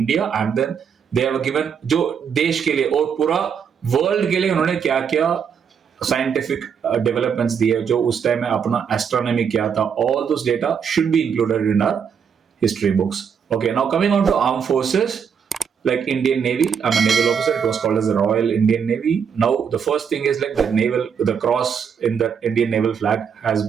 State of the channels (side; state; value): left; quieter; 7.1 dB